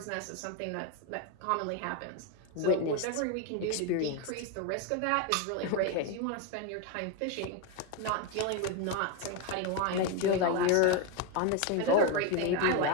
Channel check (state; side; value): different; both; correlation 0.02